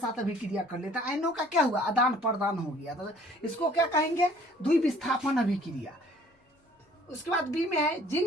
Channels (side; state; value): both; normal; correlation 0.56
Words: अभिक्रिया कर लेता है। आयनों का क्या हुआ आदान प्रदान हो गया, तो इसको क्या कहेंगे द्विविस्थापन अभिक्रिया। उसके बाद बी में है